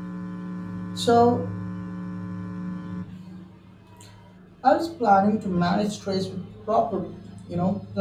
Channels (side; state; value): both; identical; correlation 1.00